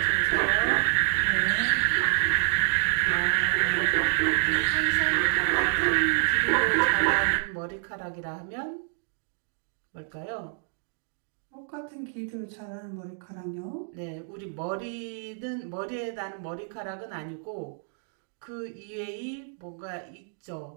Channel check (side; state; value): left; silent; digital silence